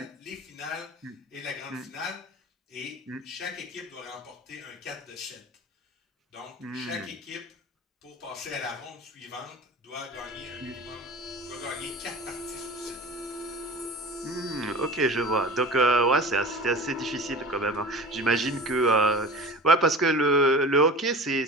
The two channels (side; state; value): both; normal; correlation 0.37